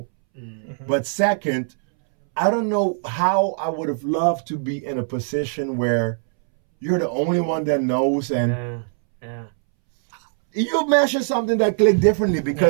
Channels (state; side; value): silent; left; 63 dB below the other